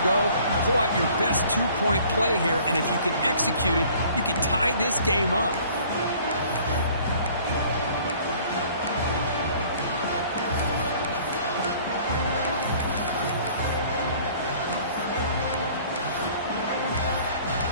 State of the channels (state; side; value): inverted; both; correlation -0.53